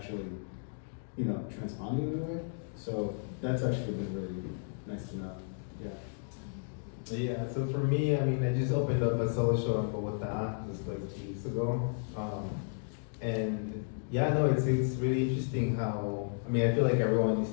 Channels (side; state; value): right; silent; digital silence